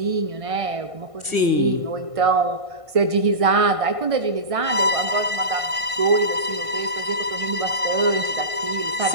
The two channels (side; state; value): left; late; 1.5 ms